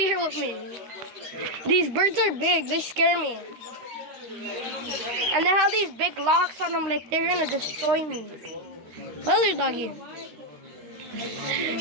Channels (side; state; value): left; late; 13 ms